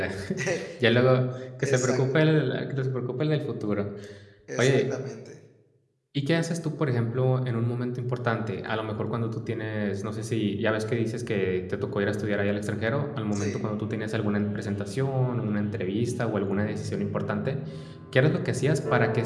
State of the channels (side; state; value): both; identical; correlation 1.00